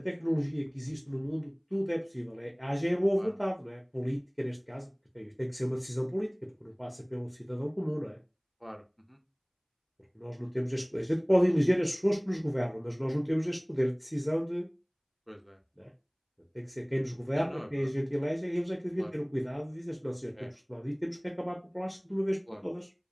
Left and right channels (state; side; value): identical; both; correlation 1.00